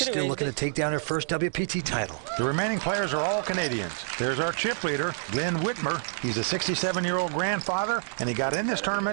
still looking to take down her first WPT title. The remaining players are all Canadians. There's our chip leader, Glenn Whitmer. He's a 67-year-old grandfather, and he got in this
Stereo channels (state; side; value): silent; left; digital silence